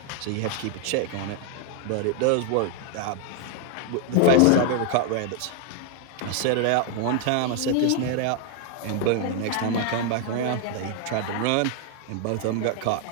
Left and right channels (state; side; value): different; both; correlation 0.00